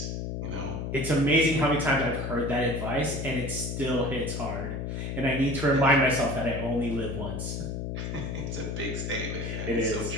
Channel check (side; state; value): left; noise; hum, 4 dB below the sound